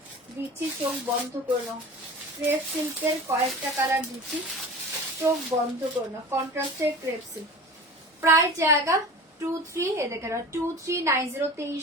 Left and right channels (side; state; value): both; normal; correlation 0.36